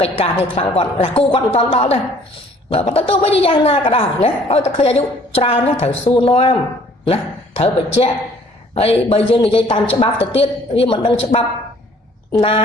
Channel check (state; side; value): normal; both; correlation 0.57